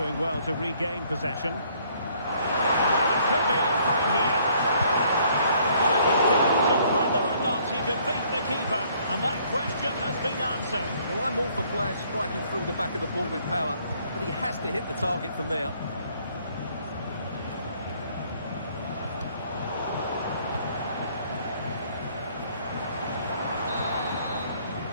well to regain possession. Well, it could be on for him here. Well, it was down to whether or not he could beat the keeper, and that question has been answered. Well, I'm all for players striking through the back of the ball with power, but he has to hit the target from there.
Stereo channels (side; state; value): both; inverted; correlation -0.63